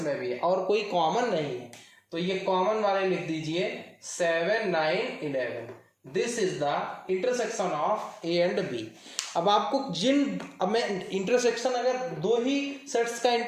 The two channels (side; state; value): both; identical; correlation 1.00